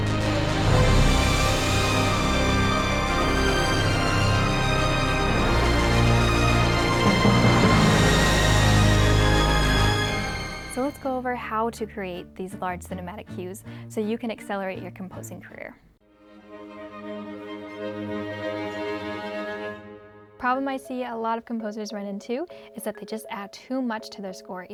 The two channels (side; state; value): both; identical; correlation 1.00